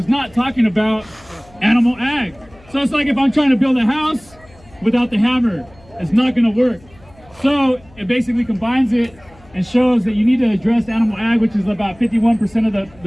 not talking about animal ag. So it's like if I'm trying to build a house without the hammer, it's not going to work. So it basically combines it and shows that you need to address animal ag, which is about 51% of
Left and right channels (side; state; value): left; noise; hum, 26 dB below the sound